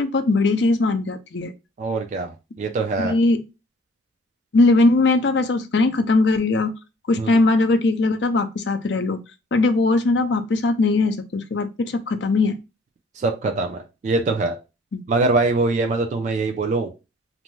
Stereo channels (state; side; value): normal; both; correlation 0.57